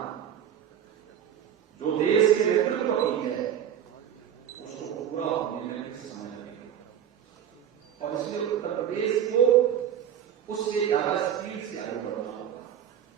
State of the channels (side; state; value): left; quieter; 9.5 dB